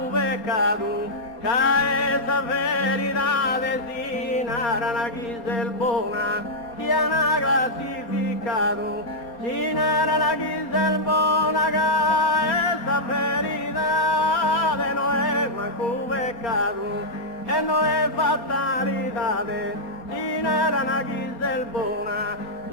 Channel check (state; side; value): late; right; 4.2 ms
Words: peccato, che esa verità sinara una chisel buona, sia una classificato, sinara una chisel buona, che esa verità no è manco peccato, e non è fatalità, sinara una chisel buona,